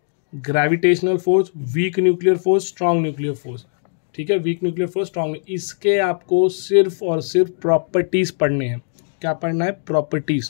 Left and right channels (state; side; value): silent; right; digital silence